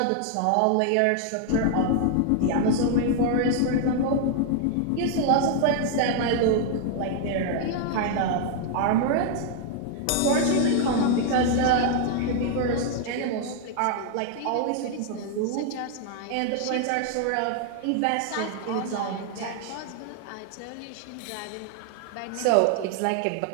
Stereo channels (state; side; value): different; both; correlation 0.00